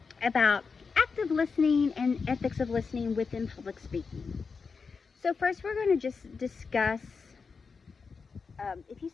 about active listening and ethics of listening within public speaking. So first we're going to just discuss,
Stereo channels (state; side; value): quieter; right; 5.1 dB